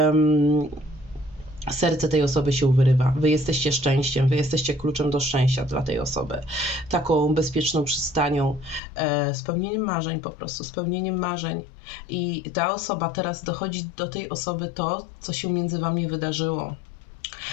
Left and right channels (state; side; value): drops out; right; at 8.8 s